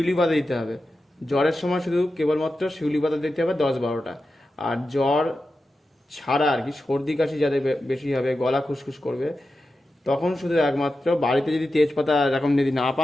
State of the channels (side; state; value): both; normal; correlation 0.91